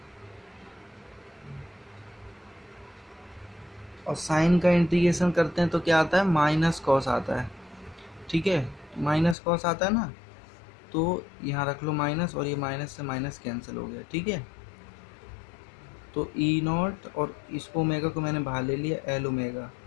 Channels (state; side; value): drops out; right; at 9.3 s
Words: और साइन का इंटीग्रेशन करते हैं तो क्या आता है, माइनस कॉस आता है। ठीक है, माइनस कॉस आता है ना, तो यहाँ रख लो माइनस, और ये माइनस से माइनस कैंसिल हो गया। ठीक है, तो ई नॉट और इसको ओमेगा को मैंने बाहर ले लिया, L omega,